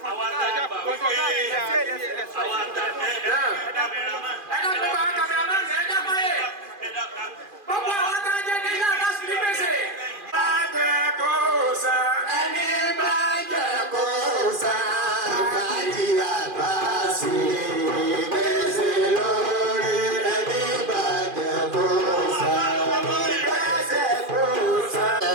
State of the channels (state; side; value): late; left; 2.4 ms